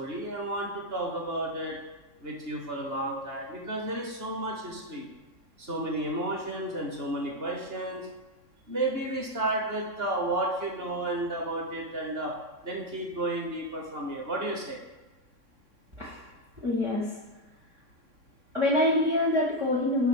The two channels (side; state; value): left; late; 3.6 ms